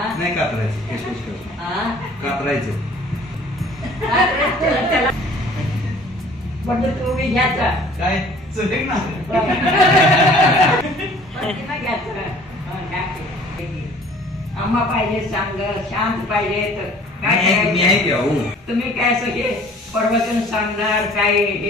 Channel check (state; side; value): normal; both; correlation 0.51